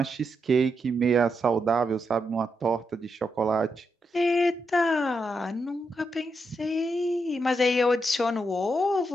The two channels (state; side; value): normal; both; correlation 0.83